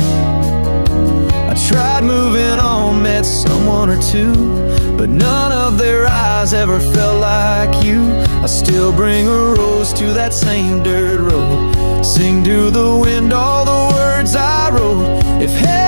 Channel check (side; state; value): both; inverted; correlation -1.00